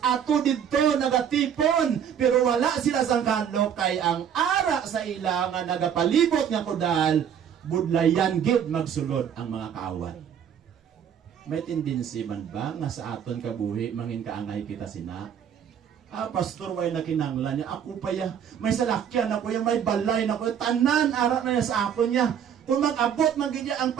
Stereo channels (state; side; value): quieter; left; 8.5 dB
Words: ato didto nagatipon, pero wala sila sang kanlo kay ang ara sa ila nga nagapalibot nga kudal, budlayan gid magsulod ang mga kaaway. May tendency man ba nga sa aton kabuhi mangin kaangay kita sina? Pastor, way na kinanglan niya. Ako pa ya, may salakyan ako ya, may balay na ako. Tanan, ara na niya sa ako niya. Kung mag-abot, magigya ang